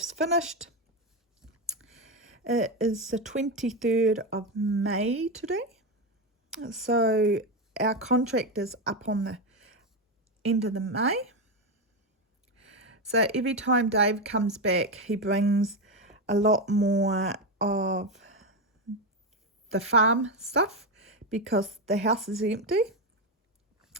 finished. It is the 23rd of May today. So our contract is up on the end of the May. So every time Dave comes back, he brings a lot more of the farm stuff because the house is empty.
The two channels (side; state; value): both; normal; correlation 0.11